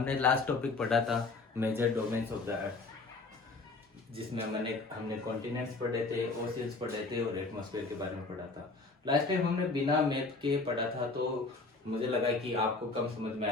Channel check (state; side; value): quieter; right; 3.7 dB